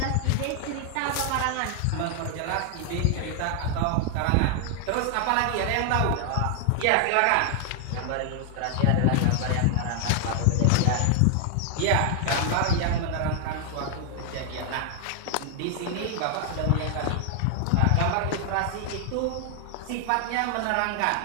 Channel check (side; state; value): both; different; correlation 0.00